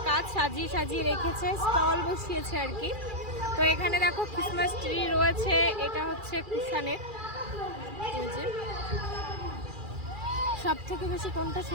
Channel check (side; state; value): left; late; 2.4 ms